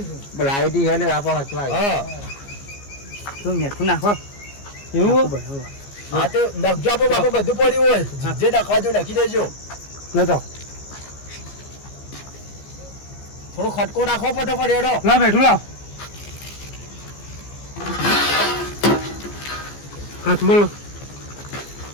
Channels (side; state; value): right; late; 14 ms